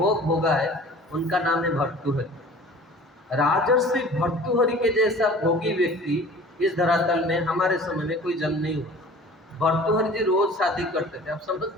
भोगा है, उनका नाम है भर्तृहरि। राजर्षि भर्तृहरि के जैसा भोगी व्यक्ति इस धरातल में हमारे समय में कोई जन्म नहीं हुआ। भर्तृहरि जी रोज शादी करते थे। आप समझ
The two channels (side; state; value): both; normal; correlation 0.45